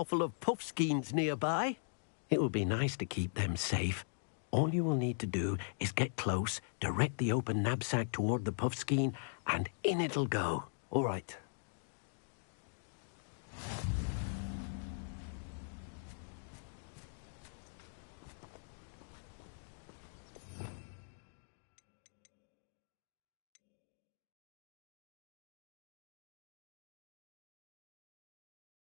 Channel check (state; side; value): silent; right; digital silence